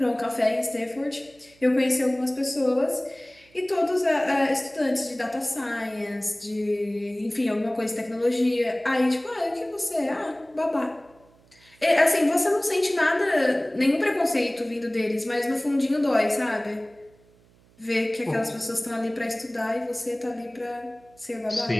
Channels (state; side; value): noise; right; hum, 30 dB below the sound